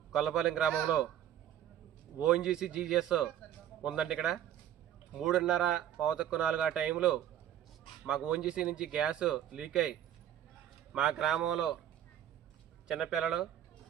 గొల్లపాలెం గ్రామంలో ఓఎన్జీసీ జీజీఎస్ ఉందండి. ఇక్కడ 3:30 4 ఆ టైంలో మాకు ఓఎన్జీసీ నుంచి గ్యాస్ లీక్ అయ్యి మా గ్రామంలో చిన్నపిల్లలు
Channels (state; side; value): quieter; left; 10.9 dB